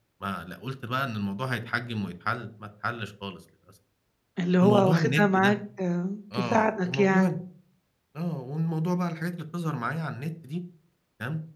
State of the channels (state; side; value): identical; both; correlation 1.00